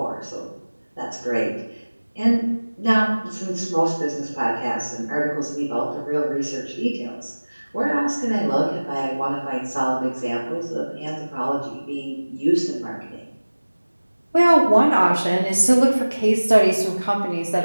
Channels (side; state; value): both; inverted; correlation -1.00